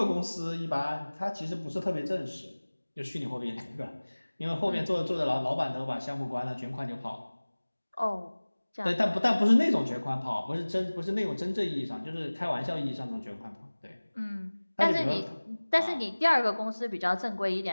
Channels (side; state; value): both; inverted; correlation -1.00